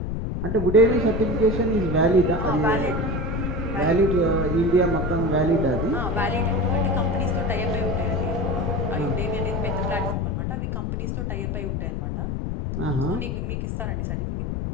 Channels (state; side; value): noise; left; rumble, 2 dB below the sound